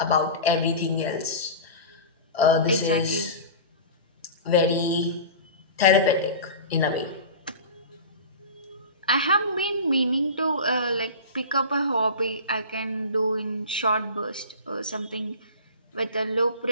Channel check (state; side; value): inverted; both; correlation -0.33